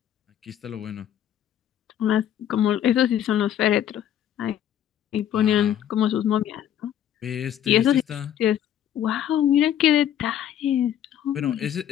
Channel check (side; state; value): right; quieter; 10.5 dB